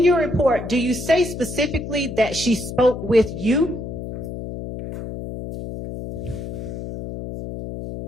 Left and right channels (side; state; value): left; noise; hum, 8 dB below the sound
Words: your report, do you say specifically that she spoke with you?